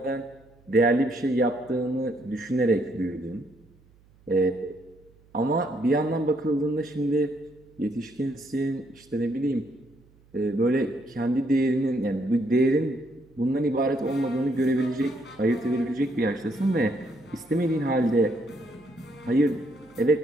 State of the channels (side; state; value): right; noise; hum, 30 dB below the sound